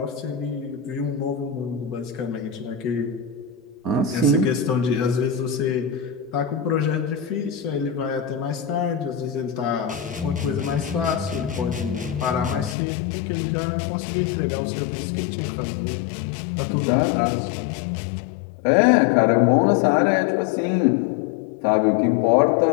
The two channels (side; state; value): right; drops out; at 12.8 s